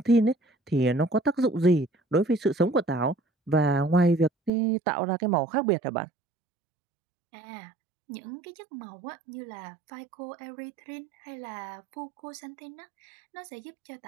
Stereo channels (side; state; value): left; drops out; at 4.5 s